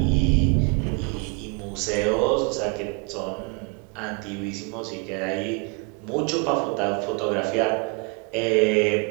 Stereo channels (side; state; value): left; quieter; 32.9 dB